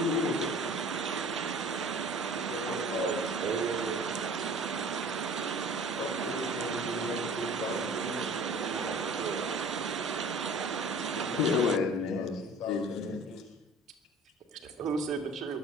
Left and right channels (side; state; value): both; normal; correlation 0.45